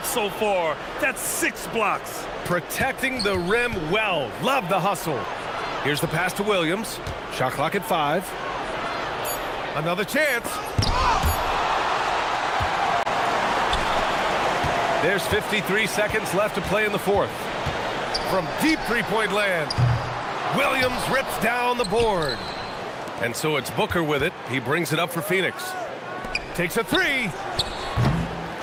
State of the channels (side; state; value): both; identical; correlation 1.00